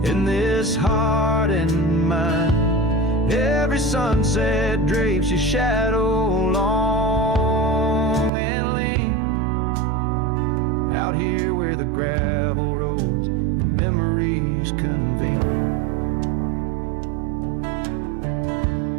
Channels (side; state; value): left; drops out; at 8.3 s